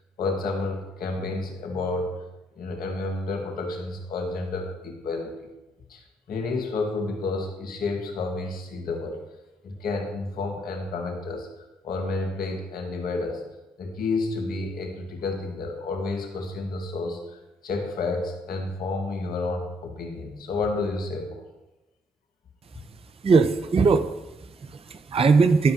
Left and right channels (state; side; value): normal; both; correlation 0.71